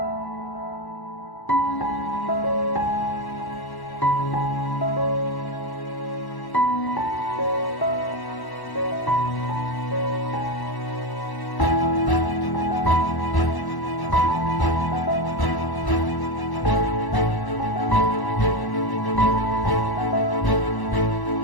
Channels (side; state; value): right; late; 1.1 ms